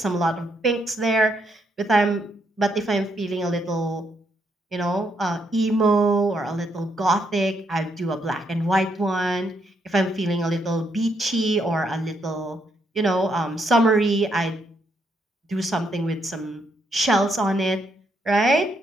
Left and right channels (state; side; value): normal; both; correlation 0.76